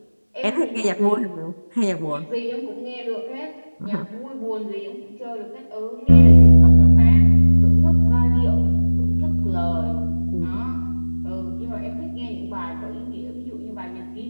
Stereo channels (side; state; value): both; inverted; correlation -1.00